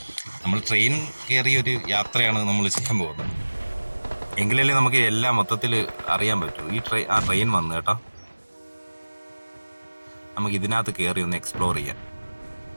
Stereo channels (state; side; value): inverted; both; correlation -1.00